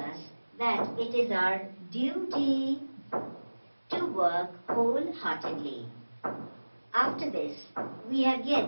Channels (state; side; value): inverted; both; correlation -1.00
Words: that it is our duty to work wholeheartedly. After this, we have